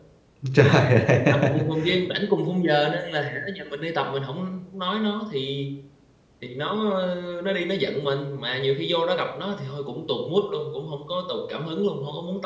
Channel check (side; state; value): both; identical; correlation 1.00